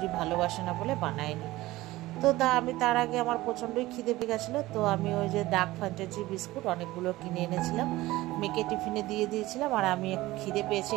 ভালোবাসে না বলে বানায়নি। তো আমি তার আগে আমার প্রচণ্ডই খিদে পেয়ে গেছিলো, তো আমি ওই যে ডার্ক ফ্যান্টাসি বিস্কুট অনেকগুলো কিনে এনেছিলাম, মেয়েকে টিফিনে দিয়ে দিয়েছিলাম। আর আমি খিদে পেয়েছে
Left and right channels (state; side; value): quieter; left; 18.0 dB